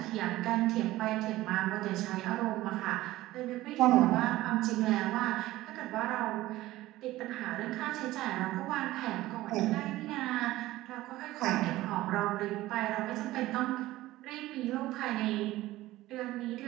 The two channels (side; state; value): left; quieter; 16.7 dB